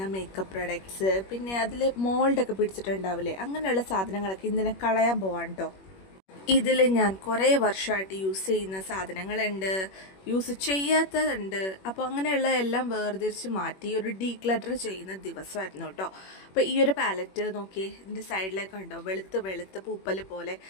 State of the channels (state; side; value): late; right; 21 ms